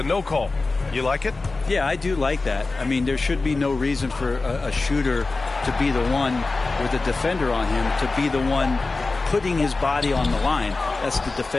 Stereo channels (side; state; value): right; quieter; 3.6 dB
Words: no call. You like it? Yeah, I do like that. I mean, there should be no reason for a shooter to be the one with a defender on him, to be the one putting his body on the line. That's the